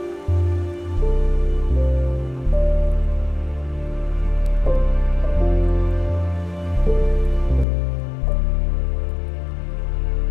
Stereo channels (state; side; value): drops out; right; at 7.7 s